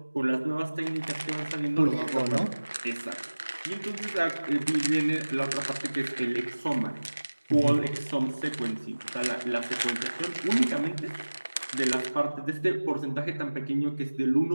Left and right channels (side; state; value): both; inverted; correlation -1.00